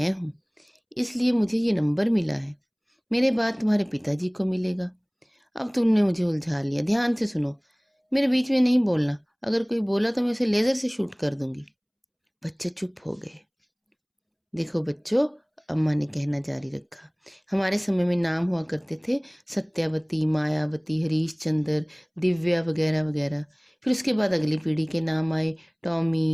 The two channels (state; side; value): identical; both; correlation 1.00